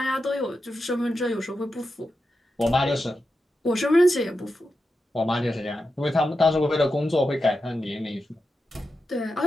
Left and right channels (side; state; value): both; normal; correlation 0.89